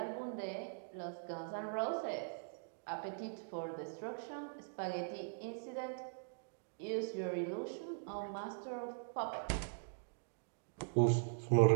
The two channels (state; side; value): silent; left; digital silence